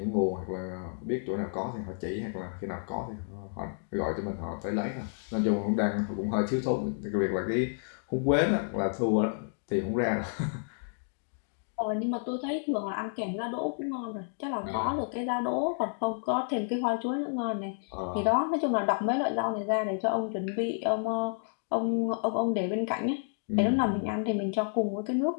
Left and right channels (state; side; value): silent; right; digital silence